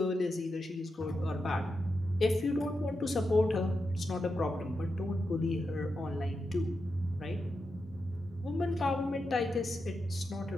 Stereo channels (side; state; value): both; normal; correlation 0.88